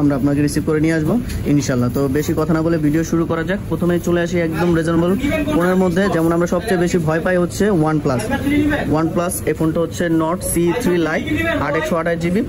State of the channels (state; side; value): identical; both; correlation 1.00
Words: আমরা আপনাকে রিসিভ করে নিয়ে আসবো ইনশাল্লাহ। তো বেশি কথা না বলে ভিডিও শুরু করা যাক। প্রথমেই চলে আসি একদম রিজনেবল ফোনের মধ্যে। যেমন আমরা সবচেয়ে বেশি ভয় পাই হচ্ছে ওয়ানপ্লাস। এই ফোনটা হচ্ছে not C3 light, 8/128 GB,